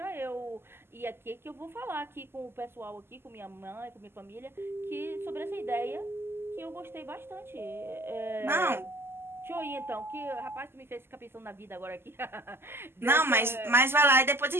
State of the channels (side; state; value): left; late; 0.12 ms